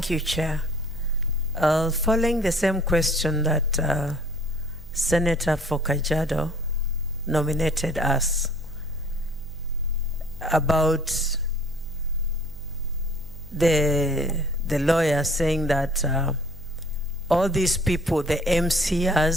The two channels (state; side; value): normal; both; correlation 0.53